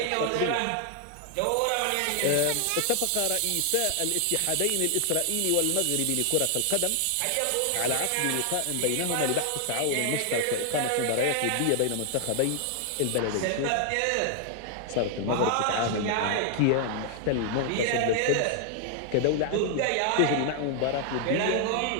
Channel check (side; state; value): both; different; correlation 0.00